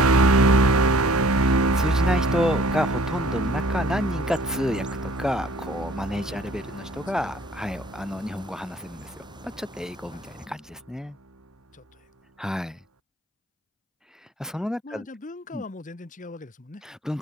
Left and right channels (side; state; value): both; normal; correlation 0.55